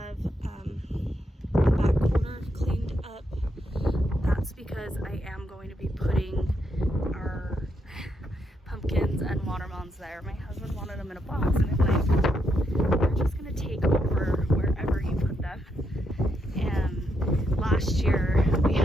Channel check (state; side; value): normal; both; correlation 0.80